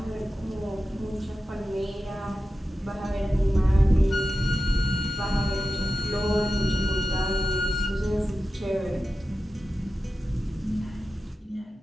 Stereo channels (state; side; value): normal; both; correlation 0.92